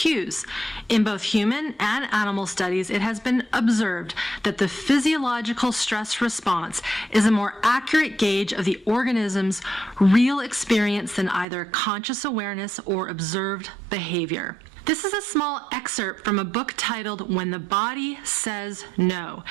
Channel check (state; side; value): drops out; left; at 11.5 s